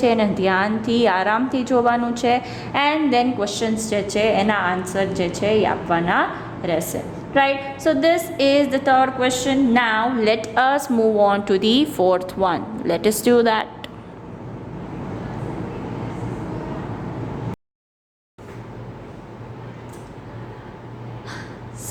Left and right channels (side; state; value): both; identical; correlation 1.00